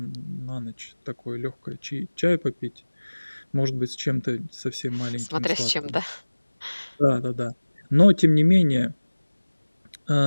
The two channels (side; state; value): both; inverted; correlation -1.00